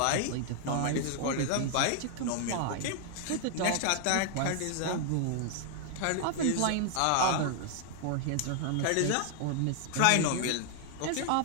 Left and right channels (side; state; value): both; different; correlation 0.00